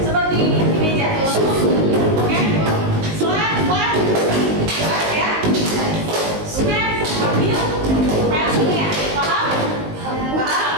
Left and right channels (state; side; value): late; left; 19 ms